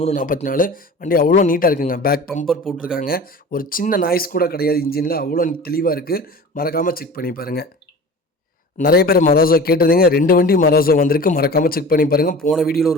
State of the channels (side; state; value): both; normal; correlation 0.38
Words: 44. வண்டி அவ்வளோ நீட்டாக இருக்குங்க. பேக் பம்பர் போட்டிருக்காங்க. ஒரு சின்ன நாய்ஸ் கூட கிடையாது இன்ஜினில். அவ்வளோ தெளிவாக இருக்குது. மறக்காமல் செக் பண்ணி பாருங்கள். நிறைய பேர் மராசோ கேட்டிருந்தீங்க. 2 வண்டி மராசோ வந்திருக்கு. மறக்காமல் செக் பண்ணி பாருங்கள். போன வீடியோவில்